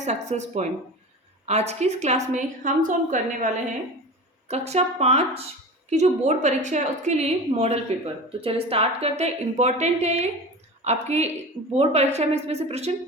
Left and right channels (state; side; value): normal; both; correlation 0.32